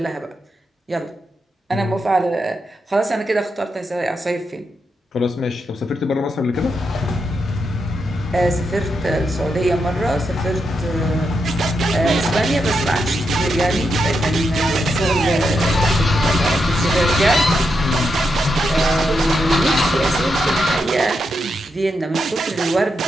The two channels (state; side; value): normal; both; correlation 0.84